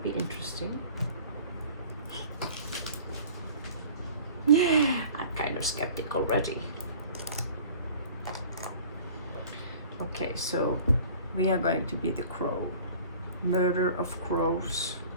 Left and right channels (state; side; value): inverted; both; correlation -0.46